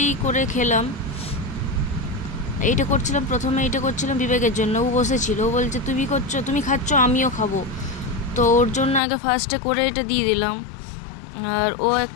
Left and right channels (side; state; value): right; drops out; at 9.0 s